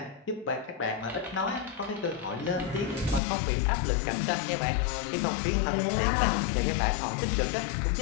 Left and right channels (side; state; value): right; drops out; at 3.2 s